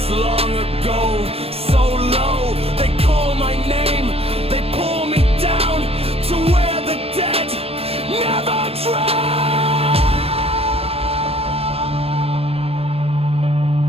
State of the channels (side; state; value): left; late; 0.28 ms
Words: long ago, so low. They call my name, they pull me down to where the dead never drown.